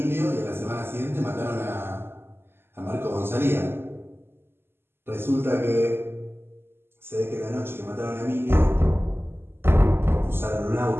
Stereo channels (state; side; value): late; left; 0.11 ms